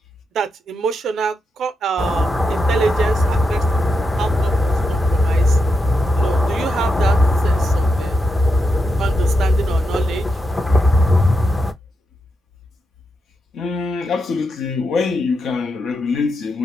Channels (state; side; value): normal; both; correlation 0.85